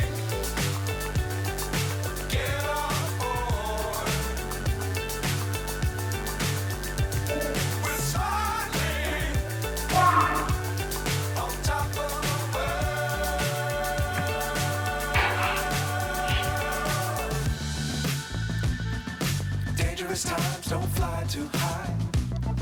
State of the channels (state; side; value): identical; both; correlation 1.00